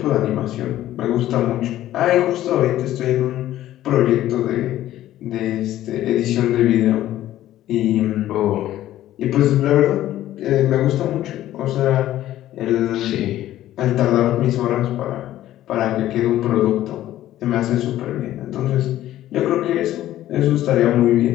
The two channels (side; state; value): right; quieter; 13.6 dB